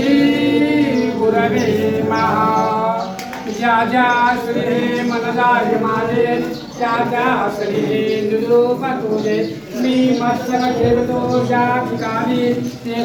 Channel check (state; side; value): identical; both; correlation 1.00